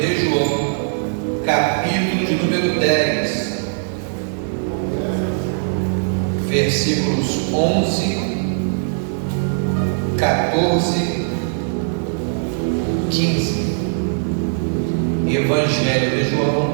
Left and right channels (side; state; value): left; silent; digital silence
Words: João, capítulo de número 10, versículos 11, 14, 15. Evangelho de